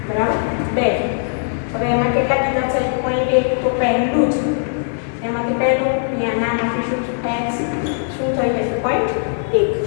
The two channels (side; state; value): right; silent; digital silence